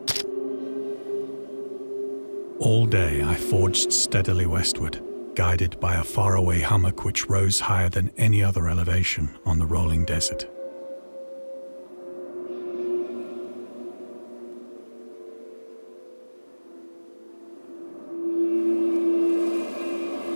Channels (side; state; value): both; inverted; correlation -1.00